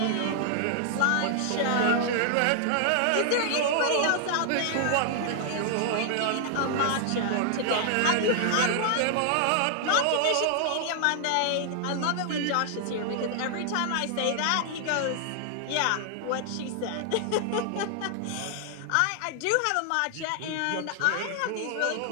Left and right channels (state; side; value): different; both; correlation 0.00